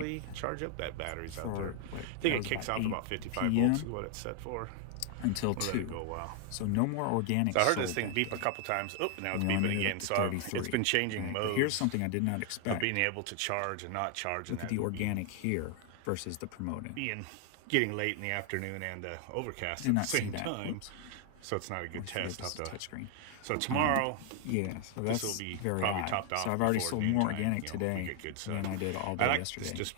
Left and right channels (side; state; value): both; different; correlation 0.00